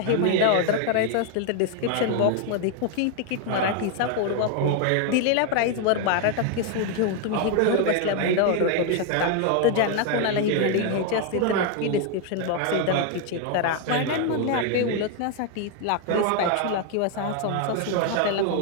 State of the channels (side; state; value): both; different; correlation 0.01